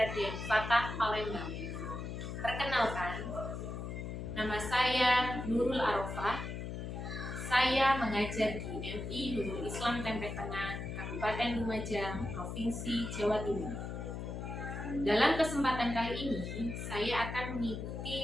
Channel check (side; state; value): left; noise; hum, 6 dB below the sound